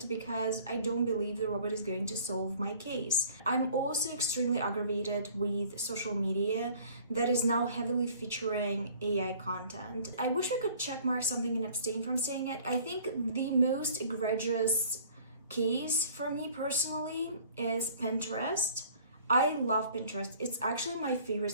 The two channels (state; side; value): inverted; both; correlation -0.52